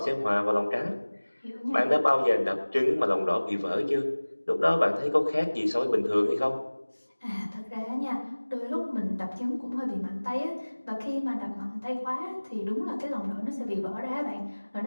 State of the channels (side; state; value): both; inverted; correlation -1.00